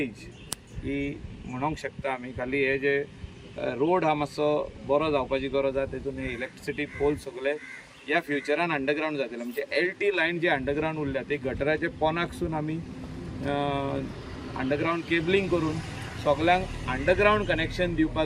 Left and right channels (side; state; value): both; identical; correlation 1.00